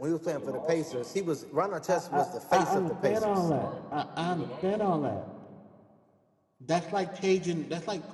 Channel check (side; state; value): both; identical; correlation 1.00